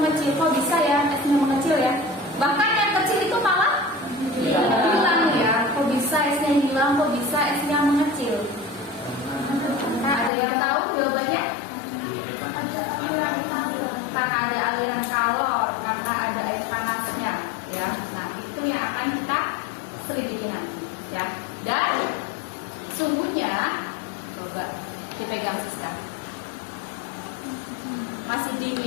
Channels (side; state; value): right; drops out; at 10.3 s